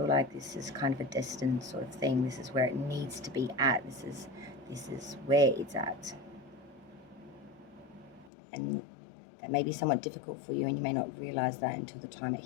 like this is kind of a destined sort of thing. This is where it needs to be at. This is where it's at. And that may be somewhat difficult for you, and you may not realize that until the time it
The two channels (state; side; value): drops out; right; at 8.3 s